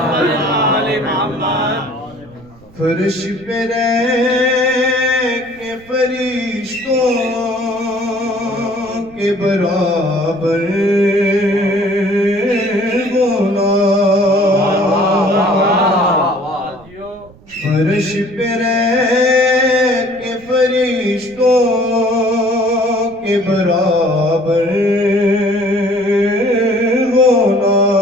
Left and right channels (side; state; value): right; noise; rumble, 25 dB below the sound